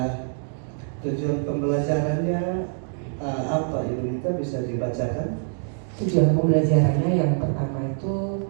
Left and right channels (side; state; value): left; silent; digital silence